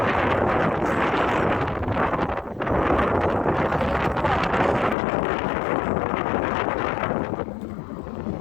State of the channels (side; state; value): right; drops out; at 5.0 s